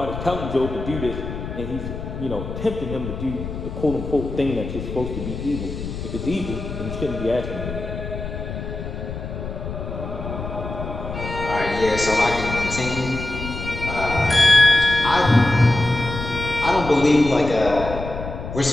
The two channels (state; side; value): noise; left; rumble, 7 dB below the sound